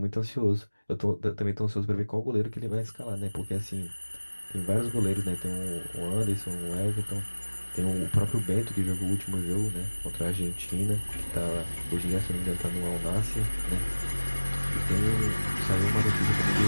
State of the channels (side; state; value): both; inverted; correlation -1.00